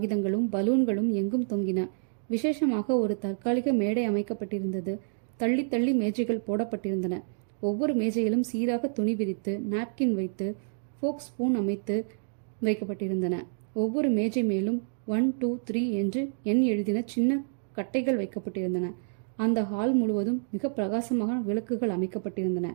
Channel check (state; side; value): silent; left; digital silence